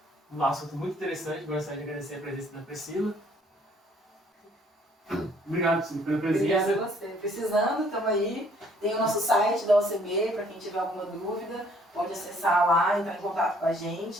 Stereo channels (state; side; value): normal; both; correlation 0.62